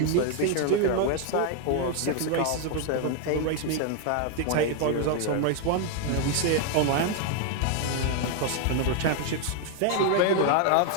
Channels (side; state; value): both; different; correlation 0.01